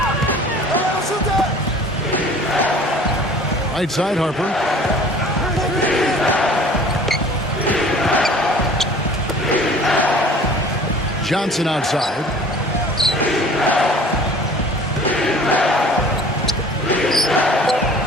Right side, Harper. Johnson outside.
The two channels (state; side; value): normal; both; correlation 0.48